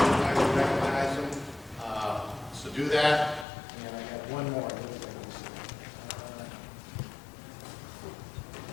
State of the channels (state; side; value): drops out; right; at 3.5 s